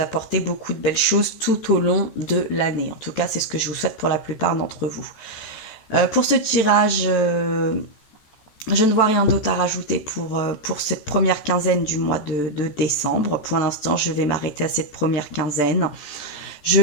beaucoup de belles choses tout au long de l'année. En tout cas, c'est ce que je vous souhaite pour la plupart d'entre vous. Pour ce tirage, je ne vois rien d'autre à rajouter pour cette première quinzaine du mois de décembre. Pour l'instant, je vais m'arrêter à cette première quinzaine. Je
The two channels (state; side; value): late; right; 14 ms